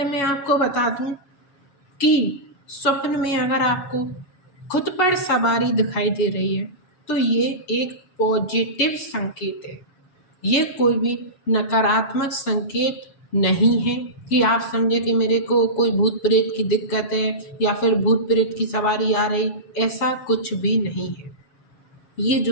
मैं आपको बता दूं कि स्वप्न में अगर आपको खुद पर सवारी दिखाई दे रही है तो ये एक पॉजिटिव संकेत है। ये कोई भी नकारात्मक संकेत नहीं है कि आप समझे कि मेरे को कोई भूत प्रेत की दिक्कत है या फिर भूत प्रेत की सवारी आ रही, ऐसा कुछ भी नहीं है। ये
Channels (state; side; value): late; right; 7.4 ms